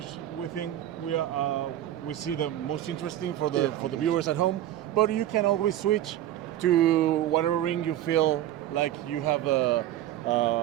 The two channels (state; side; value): quieter; left; 12.6 dB